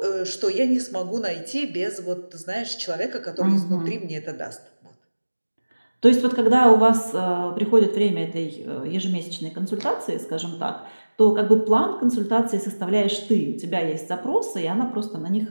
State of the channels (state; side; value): inverted; both; correlation -1.00